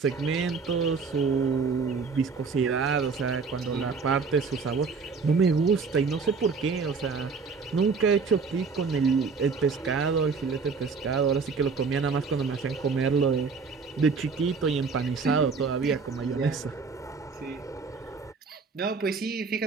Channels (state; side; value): quieter; left; 5.0 dB